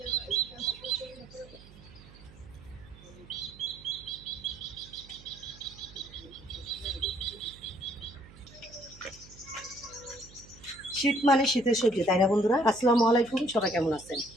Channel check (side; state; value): right; noise; hum, 21 dB below the sound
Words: মানে শীতের সবজি, তাই না বন্ধুরা? আসসালামু আলাইকুম, সবাই কেমন আছেন?